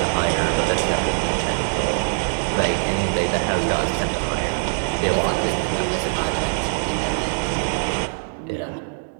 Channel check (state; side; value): silent; left; 64 dB below the other